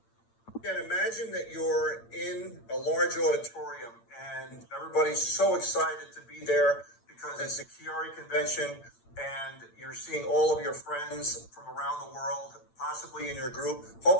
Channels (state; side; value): late; right; 8.8 ms